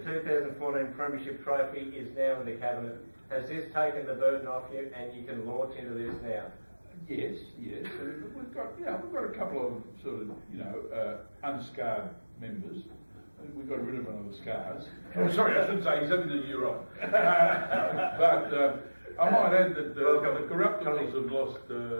Premiership Trophy is now in the cabinet. Has this taken the burden off you, and you can launch into this now? Yes. We've got a couple of sort of, unscarred members. We got rid of one of the scars. Oh, sorry, I shouldn't say he's having a year off. But I might add that the Corruptibles have lost.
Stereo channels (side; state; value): both; inverted; correlation -1.00